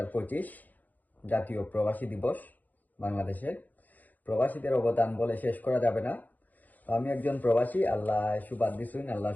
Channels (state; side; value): late; right; 0.082 ms